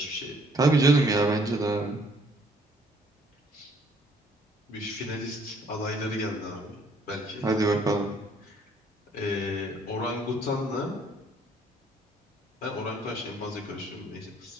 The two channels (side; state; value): both; normal; correlation 0.63